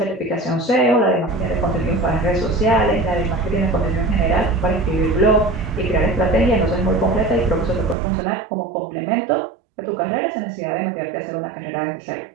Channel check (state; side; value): drops out; left; at 8.0 s